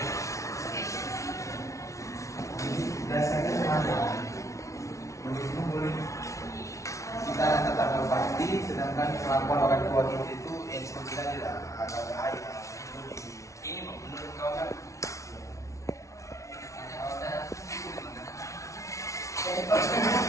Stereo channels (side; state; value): right; late; 0.15 ms